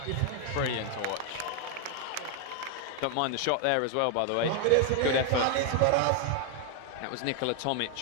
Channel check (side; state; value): both; different; correlation 0.01